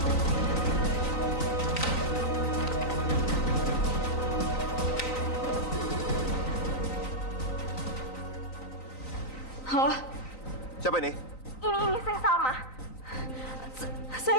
Halo, Siapa ini? ini saya Salma.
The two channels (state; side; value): late; right; 3.9 ms